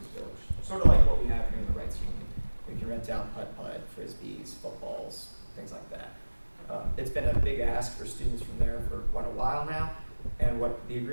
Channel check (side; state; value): both; inverted; correlation -1.00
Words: Village. Sort of like what we have here in the Rights Union. We can rent out putt-putt, frisbees, footballs, things like that. It's been a big ask for students from there for quite a while now. And what the